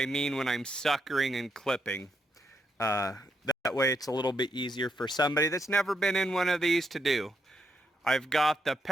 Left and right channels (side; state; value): both; normal; correlation 0.78